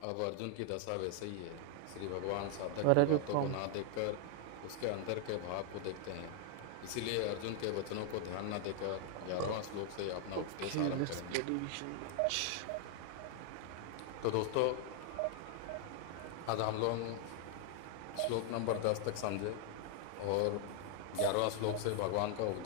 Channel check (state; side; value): different; both; correlation 0.00